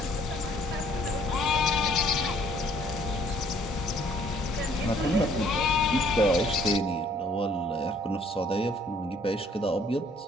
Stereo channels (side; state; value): both; normal; correlation 0.62